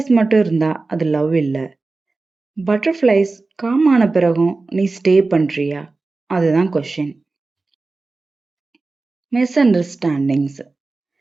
மட்டும் இருந்தா அது லவ் இல்ல. பட்டர்ஃப்ளைஸ் காம் ஆன பிறகும் நீ ஸ்டே பண்றியா? அதுதான் கொஷின். Misunderstandings.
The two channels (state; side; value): quieter; left; 3.6 dB